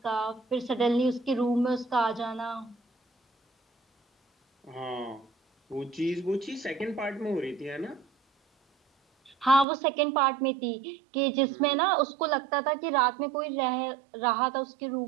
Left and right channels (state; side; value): drops out; left; at 9.7 s